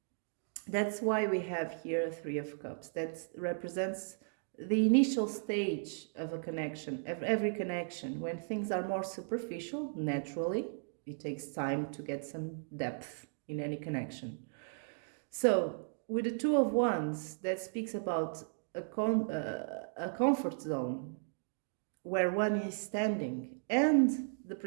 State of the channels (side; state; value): left; silent; digital silence